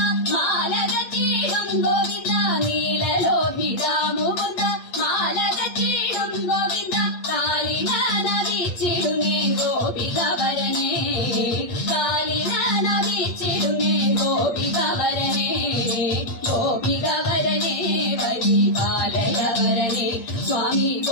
മാലകച്ചീടും ഗോവിന്ദ നീലലോഹിതാമുകുന്ദ മാലകച്ചീടും ഗോവിന്ദ കാലിനനവിച്ചിടുമേ ഗോപികവരനെ കാലിനനവിച്ചിടുമേ ഗോപികവരനെ ഗോപികവരനെ പരിപാലയവരനെ സ്വാമി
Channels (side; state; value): right; late; 8.5 ms